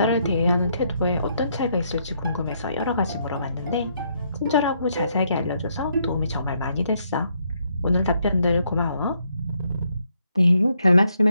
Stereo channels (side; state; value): both; inverted; correlation -0.74